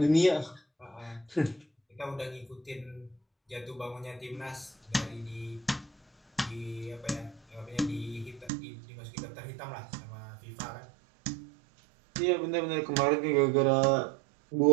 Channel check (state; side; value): drops out; left; at 8.5 s